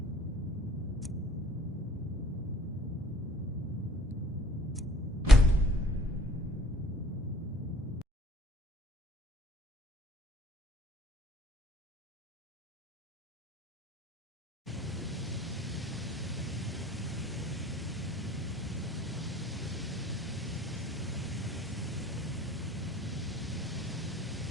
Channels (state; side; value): normal; both; correlation 0.55